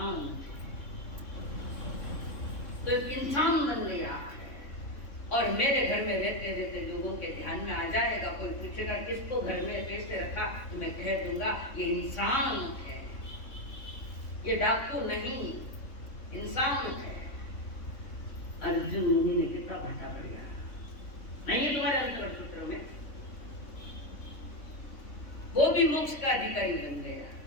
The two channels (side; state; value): right; late; 3.6 ms